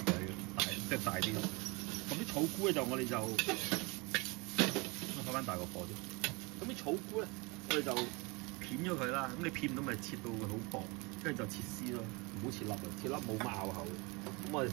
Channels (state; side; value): quieter; left; 27.4 dB